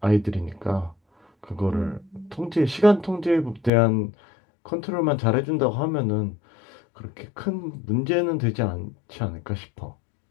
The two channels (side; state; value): right; drops out; at 3.7 s